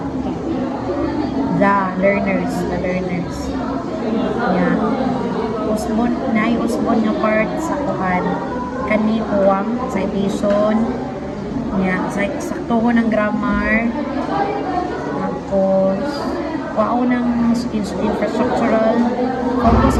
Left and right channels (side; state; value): both; identical; correlation 1.00